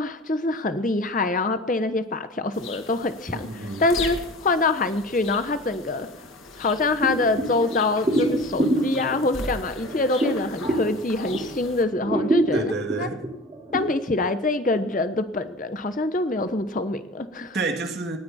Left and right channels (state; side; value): normal; both; correlation 0.38